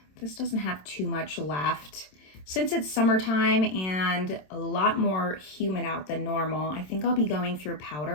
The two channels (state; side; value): late; right; 27 ms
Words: This doesn't have too much left. Since it's summertime and a lot more humid out than normal, I think I'll be going through